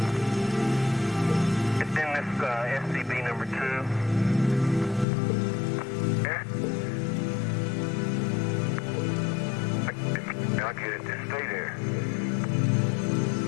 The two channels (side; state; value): right; drops out; at 5.1 s